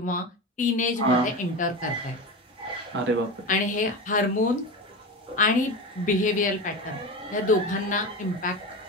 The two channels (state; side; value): normal; both; correlation 0.24